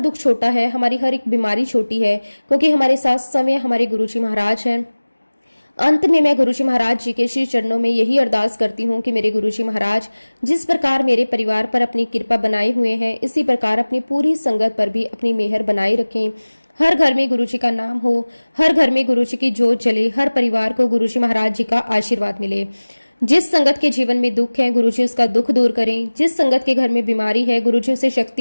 छोटा है, हमारी हर एक बीमारी छोटी है, क्योंकि हमारे साथ समय हमारे गुरुजी महाराज हैं। अंत में मैं गुरुजी महाराज जी के श्री चरणों में यही अरदास करती हूँ कि मेरे गुरुजी महाराज जिस प्रकार मेरे परिवार पर अपनी कृपा बनाए हुए हैं, इसी प्रकार अपनी पूरी संगत पर भी अपनी मेहर बनाए रखें। हर घर में गुरुजी का नाम हो, हर घर में गुरुजी की जोत जले, हर परिवार को गुरुजी महाराज जी का आशीर्वाद मिले। जिस संगत के जीवन में दुख है गुरुजी उसका दुख दूर करें। जिस संगत के घर में बीमारी है गुरुजी उसे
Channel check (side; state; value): both; inverted; correlation -1.00